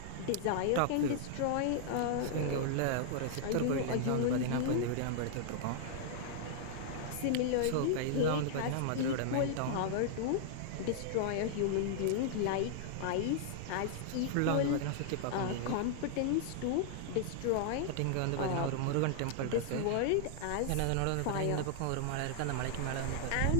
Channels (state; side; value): different; both; correlation -0.01